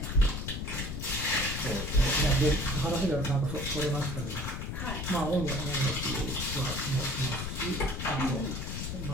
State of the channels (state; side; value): noise; left; rumble, 5 dB below the sound